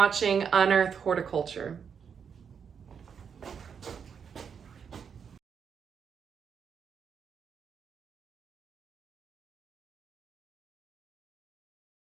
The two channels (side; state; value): left; quieter; 6.9 dB